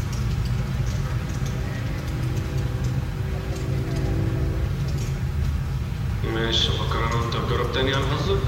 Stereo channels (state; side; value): identical; both; correlation 1.00